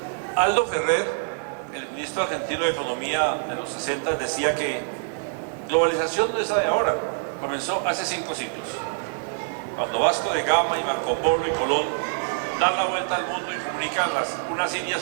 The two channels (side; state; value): left; silent; digital silence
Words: Aldo Ferrer, el ministro argentino de Economía de los 60, decía que globalización no es la de ahora, comenzó hace 5 siglos, cuando Vasco de Gama y Marco Polo y Colón dan la vuelta al mundo y comunican unas